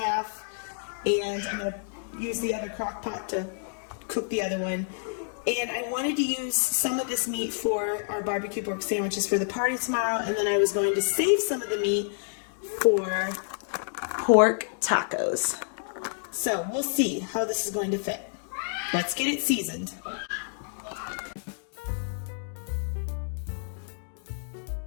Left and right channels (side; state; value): right; silent; digital silence